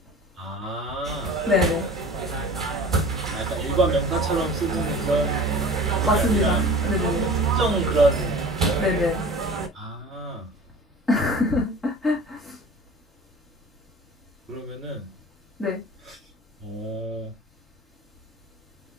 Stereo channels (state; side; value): normal; both; correlation 0.41